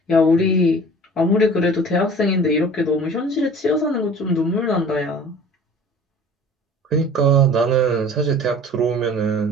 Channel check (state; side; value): normal; both; correlation 0.45